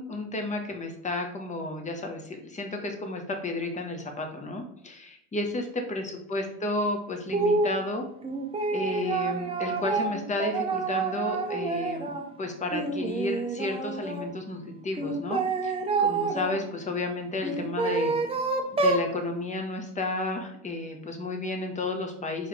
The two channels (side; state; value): both; normal; correlation 0.26